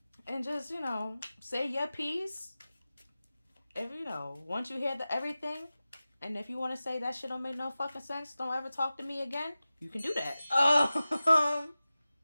and just say your piece. If once you hear everything, and if you want to say that shit don't make no fucking sense, don't ever talk to me again. You can do that.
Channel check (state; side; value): inverted; both; correlation -0.96